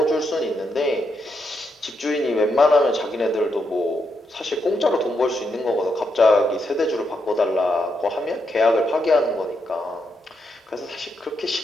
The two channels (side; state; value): both; normal; correlation 0.81